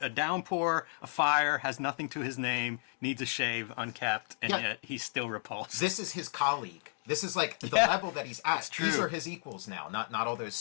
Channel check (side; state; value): right; silent; digital silence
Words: downpour, a fire, has nothing to his name, needs a shave, unkept, and yet he's still repulsed. This is his colleague. This is like the level that he's at. True. These are his equals now, not all those